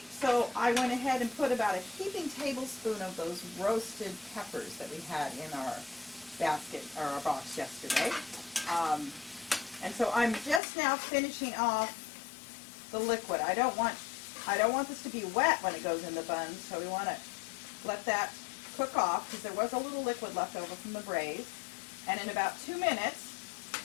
so I went ahead and put about a heaping tablespoon of those roasted peppers that we had in our basket, or our box yesterday. And so I'm just now finishing off the liquid. I don't want this to be wet when it goes in the buns, so we want to let that cook off because there was a little liquid left over from the braise. And in about 2 minutes,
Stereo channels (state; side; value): drops out; right; at 10.6 s